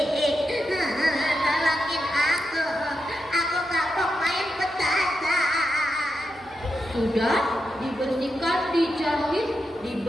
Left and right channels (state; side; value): noise; right; hum, 28 dB below the sound